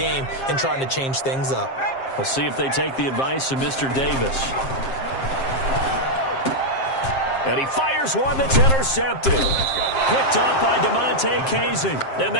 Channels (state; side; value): late; right; 7.5 ms